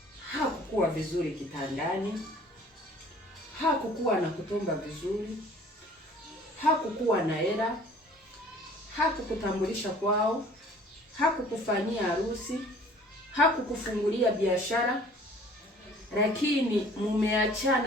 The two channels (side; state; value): both; normal; correlation 0.52